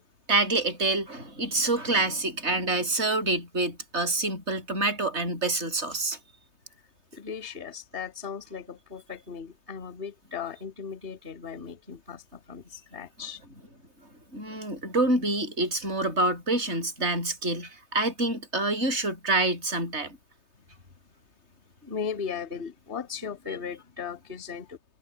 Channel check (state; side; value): late; left; 3.3 ms